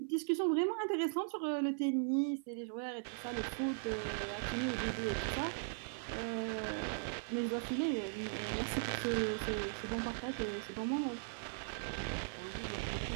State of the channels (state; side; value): silent; left; 52 dB below the other